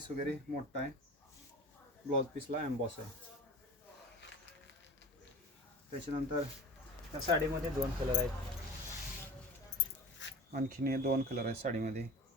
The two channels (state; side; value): normal; both; correlation 0.38